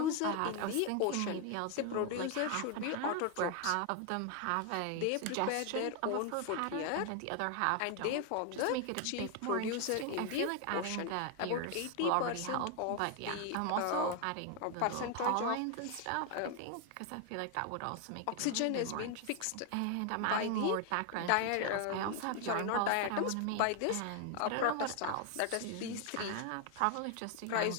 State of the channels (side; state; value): both; different; correlation 0.01